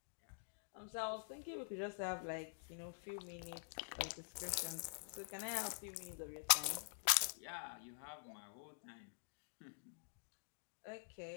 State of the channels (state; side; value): silent; right; digital silence